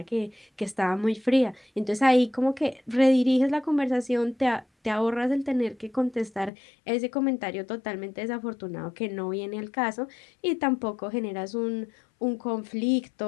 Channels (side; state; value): right; drops out; at 6.5 s